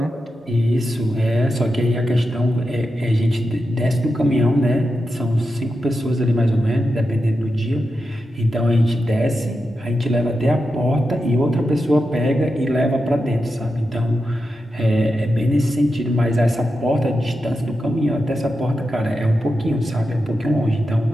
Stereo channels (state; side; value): normal; both; correlation 0.89